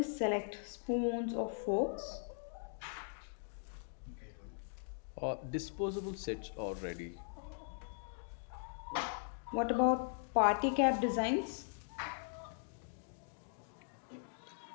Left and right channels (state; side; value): silent; right; digital silence